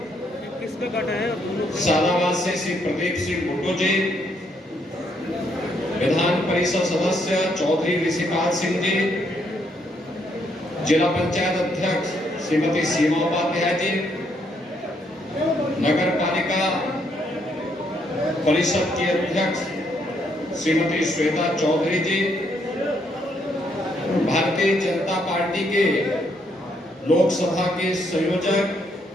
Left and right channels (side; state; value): both; normal; correlation 0.73